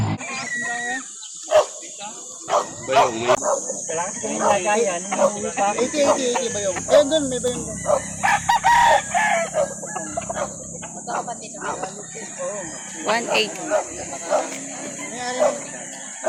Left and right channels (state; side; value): identical; both; correlation 1.00